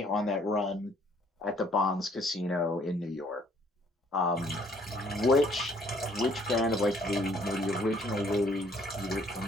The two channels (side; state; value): both; normal; correlation 0.62